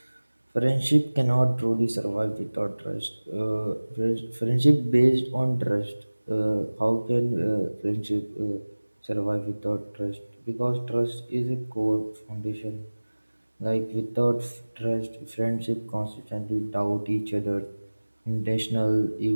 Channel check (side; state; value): both; inverted; correlation -1.00